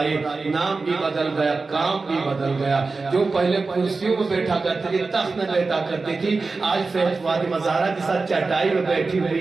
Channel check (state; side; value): quieter; left; 4.0 dB